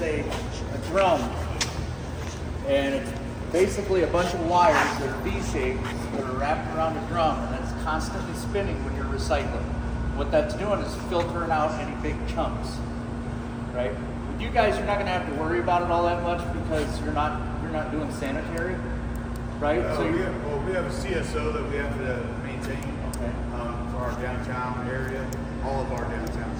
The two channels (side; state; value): both; identical; correlation 1.00